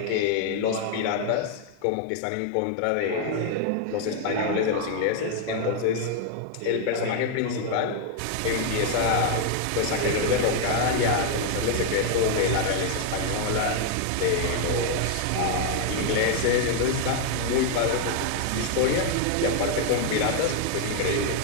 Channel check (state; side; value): different; both; correlation 0.00